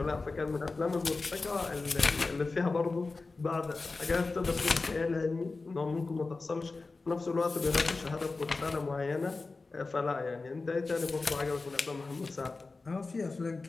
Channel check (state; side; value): quieter; right; 3.8 dB